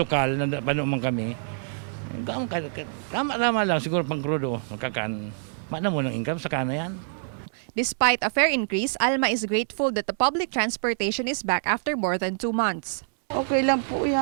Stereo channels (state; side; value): silent; left; 61 dB below the other